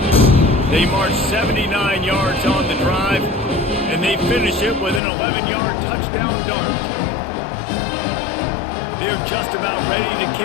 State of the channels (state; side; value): drops out; right; at 5.0 s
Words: They march 79 yards on the drive, and they finish it with an 11-yard touchdown dart. They're just about ready to